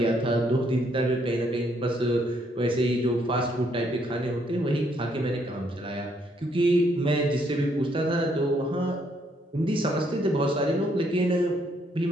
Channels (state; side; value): normal; both; correlation 0.71